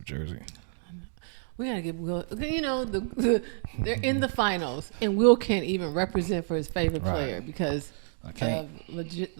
jersey. We gotta get Will. You know, they're in the finals, and Will can't even represent for his favorite player because I can't. of legit.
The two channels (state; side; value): silent; left; digital silence